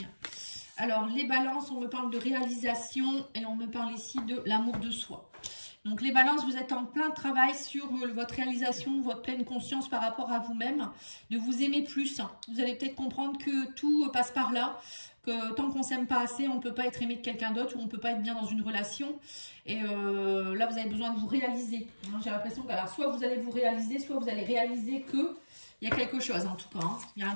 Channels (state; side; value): inverted; both; correlation -1.00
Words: Alors les balances, on me parle de réalisation et on me parle ici de l'amour de soi. Donc les balances, vous êtes en plein travail sur votre réalisation, votre pleine conscience par rapport à vous-même, de vous aimer plus. Vous allez peut-être comprendre que tout passe par là, que tant qu'on ne s'aime pas assez, on ne peut pas être aimé de quelqu'un d'autre ou on ne peut pas être bien dans une relation. Et là, vous avez besoin de vous réaliser. J'ai l'impression que alors, soit vous allez vous réaliser, soit vous allez réaliser qu'il y a quelque chose en tout cas. Il y a un